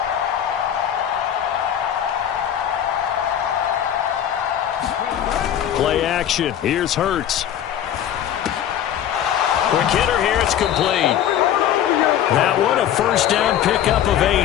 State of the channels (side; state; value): right; quieter; 10.4 dB